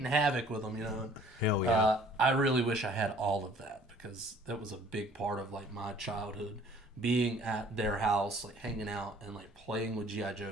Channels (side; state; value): both; normal; correlation 0.55